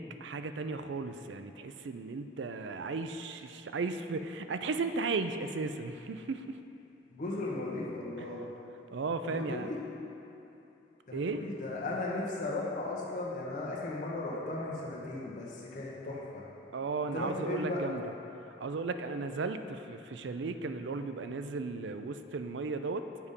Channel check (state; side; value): normal; both; correlation 0.23